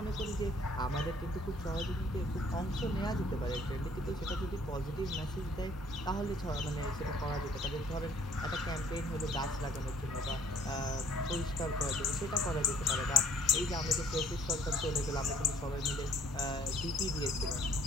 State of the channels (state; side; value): normal; both; correlation 0.60